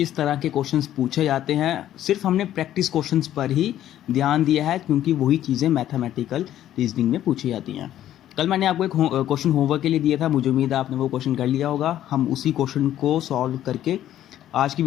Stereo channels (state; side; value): quieter; right; 12.1 dB